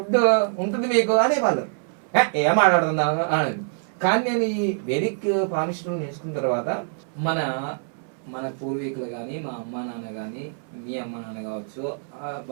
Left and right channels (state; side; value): silent; left; 62 dB below the other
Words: ఉంటుంది మీకు అనేవాళ్ళు. ఏం మాట్లాడుతున్నావు అనేది. కానీ నేను ఈ వేదిక్ పామిస్టులు నేర్చుకున్న తర్వాత మన పూర్వీకులు కానీ, మా అమ్మ నాన్న కానీ, మీ అమ్మ నాన్న కావచ్చు,